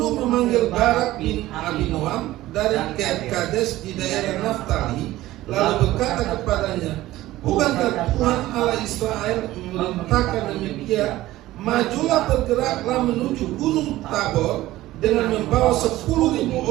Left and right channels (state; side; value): quieter; left; 16.2 dB